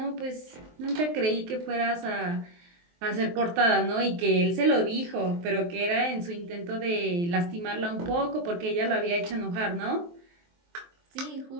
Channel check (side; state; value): left; late; 23 ms